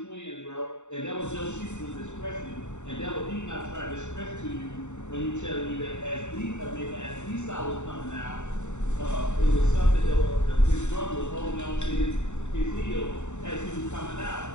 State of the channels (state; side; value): late; right; 0.84 ms